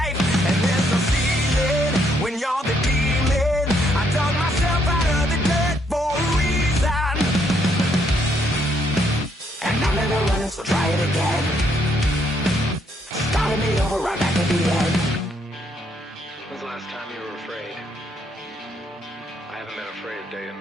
so try it again. Starting me over right back at the end. When's the last time you were afraid? I haven't been afraid a day in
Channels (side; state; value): both; normal; correlation 0.72